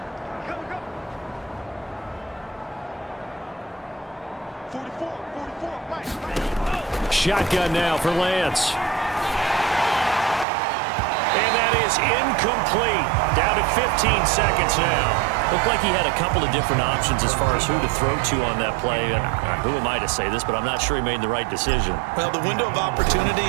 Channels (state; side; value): drops out; left; at 10.5 s